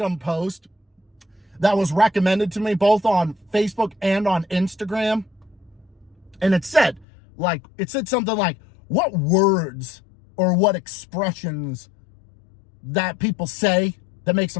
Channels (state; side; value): drops out; right; at 7.1 s